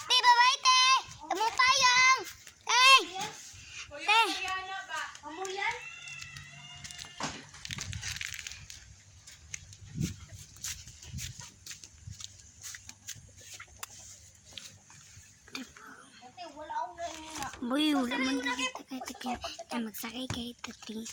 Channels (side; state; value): both; identical; correlation 1.00